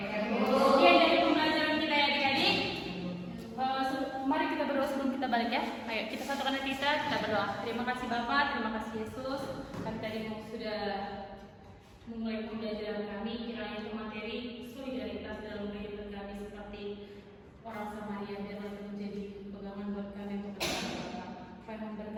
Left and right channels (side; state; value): both; identical; correlation 1.00